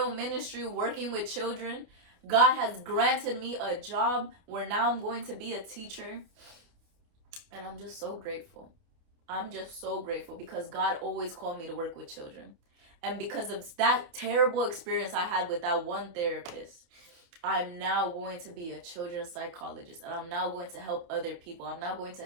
ministry working with children. God has granted me a job where now I'm going to be a teacher. And I'm just so grateful. I'm just so grateful, because God always called me to work with children. And because of that terrible experience I had with that one therapist, I'm now going to be a children's psychologist. And I'm now going to help other people. I'm now going to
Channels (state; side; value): late; left; 29 ms